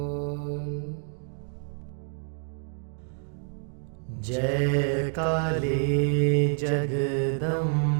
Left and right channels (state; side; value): silent; left; digital silence